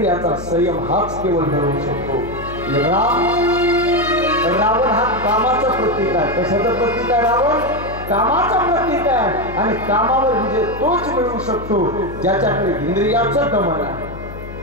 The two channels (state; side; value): noise; left; hum, 12 dB below the sound